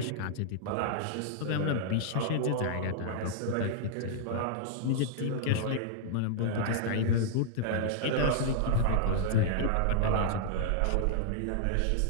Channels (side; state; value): both; different; correlation -0.01